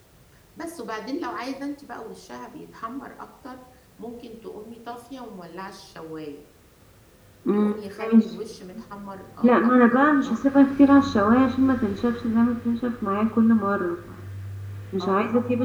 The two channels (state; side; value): identical; both; correlation 1.00